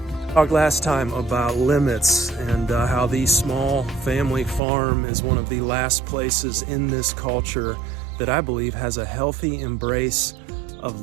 Talked last time about limits and how the small family farm is one of the last places in this culture that I believe has a healthy embrace of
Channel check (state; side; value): drops out; left; at 4.6 s